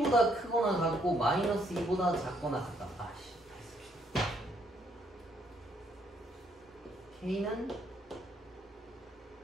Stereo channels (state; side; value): normal; both; correlation 0.71